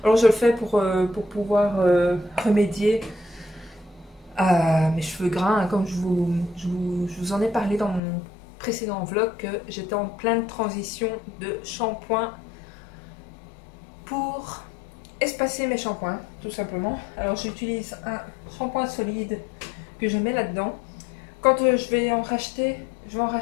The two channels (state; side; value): drops out; right; at 8.0 s